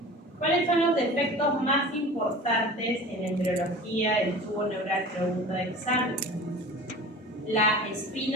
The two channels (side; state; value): both; normal; correlation 0.38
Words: ¿Cuáles son los defectos más importantes en embriología del tubo neural? Pregunta de examen. La